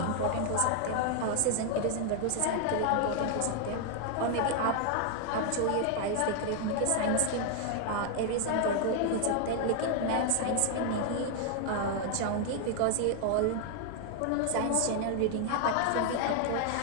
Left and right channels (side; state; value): both; different; correlation 0.00